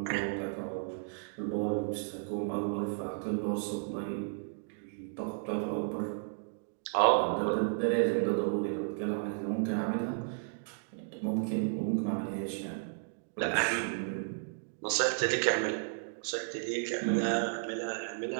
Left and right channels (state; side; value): silent; left; digital silence